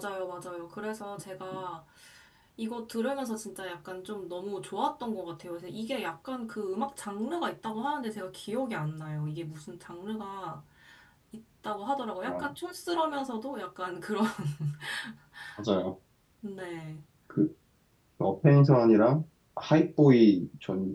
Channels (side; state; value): both; identical; correlation 1.00